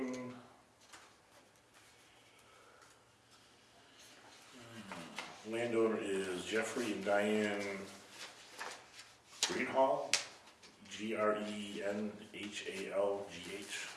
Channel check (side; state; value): both; identical; correlation 1.00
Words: Landowner is Jeffrey and Diane Greenhall, Grenhalgh.